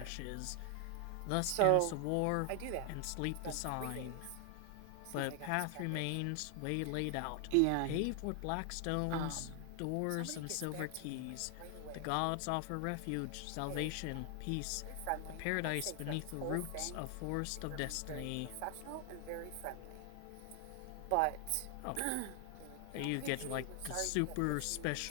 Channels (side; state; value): both; different; correlation 0.00